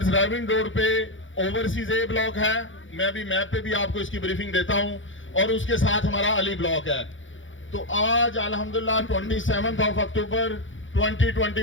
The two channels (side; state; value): right; late; 0.56 ms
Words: रायविन रोड पे ओवरसीज ए ब्लॉक है। मैं अभी मैप पे भी आपको इसकी ब्रीफिंग देता हूं और उसके साथ हमारा अली ब्लॉक है। तो आज अल्हम्दुलिल्लाह 27 अक्टूबर